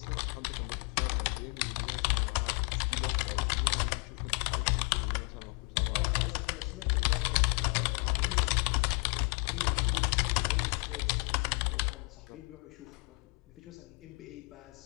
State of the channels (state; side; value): quieter; right; 31.8 dB